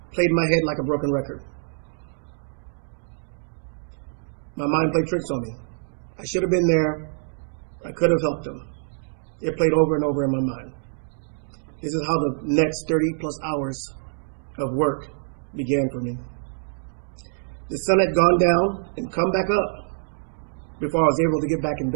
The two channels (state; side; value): silent; left; digital silence